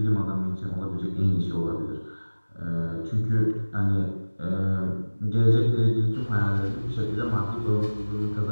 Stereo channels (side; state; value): both; inverted; correlation -1.00